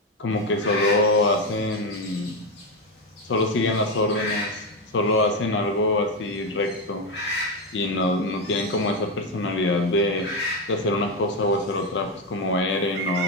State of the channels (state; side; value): normal; both; correlation 0.10